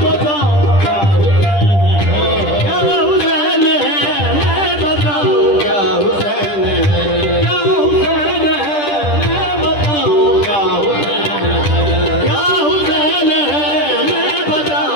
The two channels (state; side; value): late; right; 10 ms